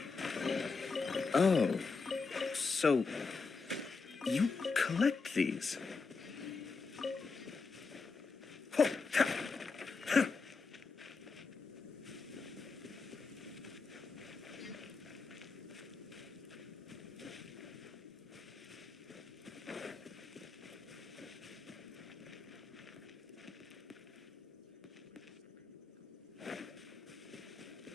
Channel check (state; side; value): quieter; right; 4.6 dB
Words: Oh. So, you collect these?